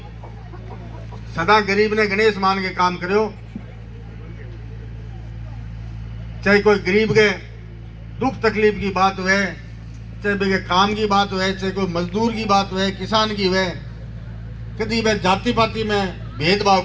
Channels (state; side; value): identical; both; correlation 1.00